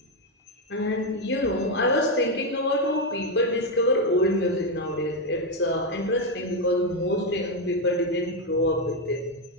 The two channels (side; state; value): both; normal; correlation 0.05